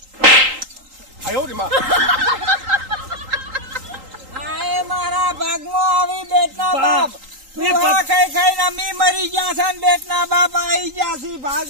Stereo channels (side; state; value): left; late; 3.8 ms